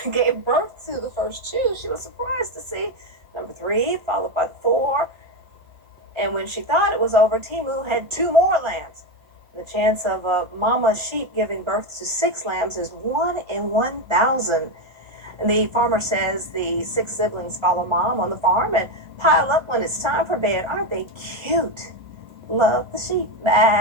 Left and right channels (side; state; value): left; late; 1.3 ms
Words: gave birth to the first two, she was surprised to see number 3 followed by 4. And when she thought it was over, Timu had 2 more lambs. The chance of a mama sheep giving birth to 6 lambs is 1 in 1,000. And the farmer says the 6 siblings follow mom on the farm and pile up when it's time for bed. Aren't they cute? Love the sheep.